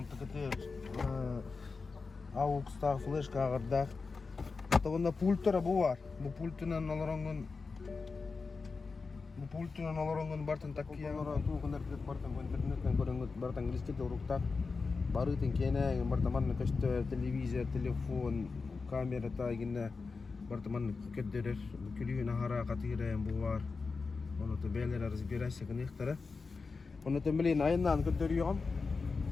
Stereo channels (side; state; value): right; quieter; 4.4 dB